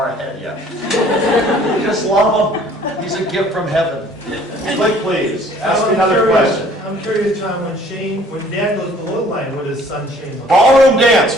ahead yet." You just love him. He's a gift from heaven. Click, please. Ask me another question. I'm curious, Tom, when Dad goes below the line, what does son Shane look like? Ballroom dance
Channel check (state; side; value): normal; both; correlation 0.55